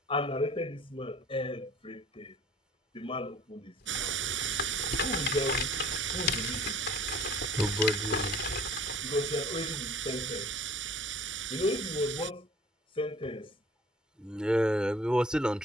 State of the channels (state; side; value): normal; both; correlation 0.49